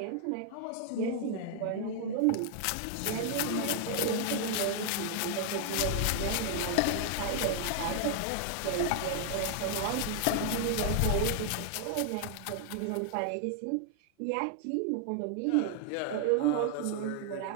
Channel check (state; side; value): different; both; correlation 0.00